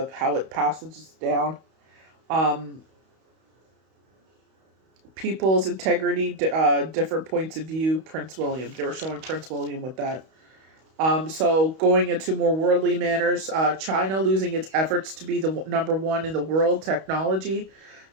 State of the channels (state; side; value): late; left; 31 ms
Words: how it passes down. People's integrity, different points of view. Prince William. They were showing Prince William with that. So going into more worldly manners, China losing its efforts to be the number one in the world technology.